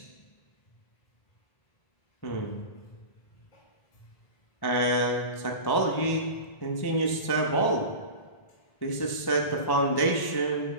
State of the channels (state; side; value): late; right; 1.1 ms